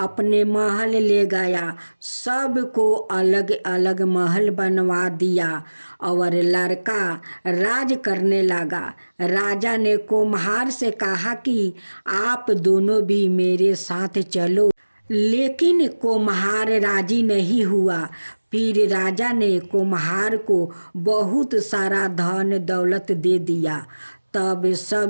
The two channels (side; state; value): both; inverted; correlation -1.00